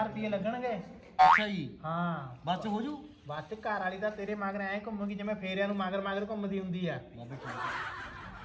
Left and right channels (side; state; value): both; identical; correlation 1.00